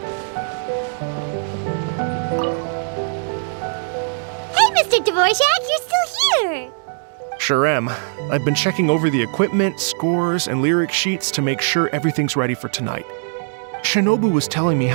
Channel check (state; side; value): silent; left; digital silence